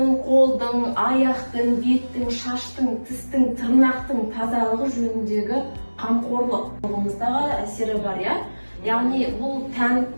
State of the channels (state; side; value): inverted; both; correlation -1.00